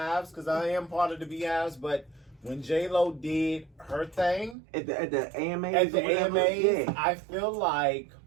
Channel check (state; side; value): drops out; left; at 4.5 s